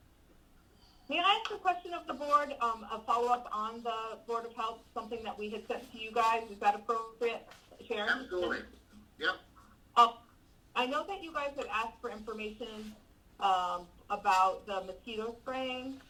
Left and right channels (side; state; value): both; identical; correlation 1.00